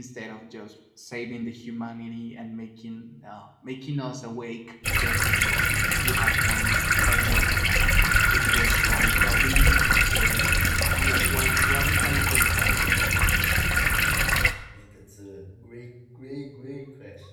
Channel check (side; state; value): both; identical; correlation 1.00